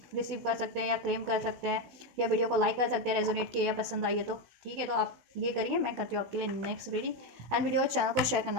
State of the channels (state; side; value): late; left; 16 ms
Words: रिसीव कर सकते हैं या क्लेम कर सकते हैं, या वीडियो को लाइक कर सकते हैं रेजोनेट किया या पसंद आई है तो, ठीक है। तो आप ये करिए, मैं करती हूँ आपके लिए next reading, and video channel को शेयर